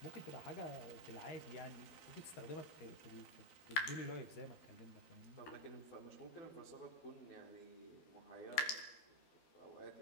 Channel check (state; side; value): late; right; 13 ms